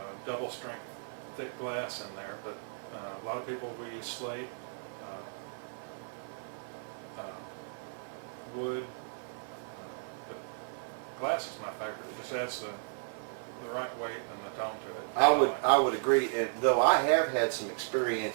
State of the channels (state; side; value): silent; left; digital silence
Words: double strength thick glass in there, but a lot of people will use slate. wood. But glass is my favorite. It just adds the right weight and the tone to it. I would agree, and though I have had some